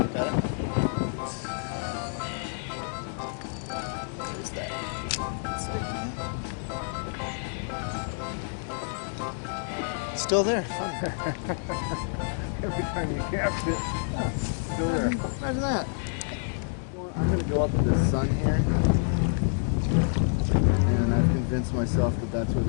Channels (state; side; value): silent; right; digital silence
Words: Got it. There's that. Still there. Fun. Every time you cast it, still there. Imagine that. Well, I'm going to go up to the sun here. And I've convinced myself that that's where